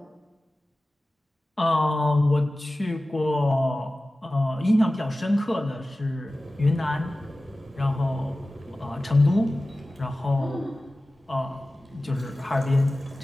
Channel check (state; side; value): normal; both; correlation 0.96